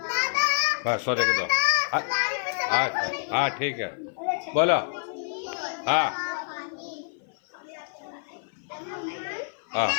बस सोने के दो। हाँ ठीक है बोलो। हाँ हाँ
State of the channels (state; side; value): silent; right; 55 dB below the other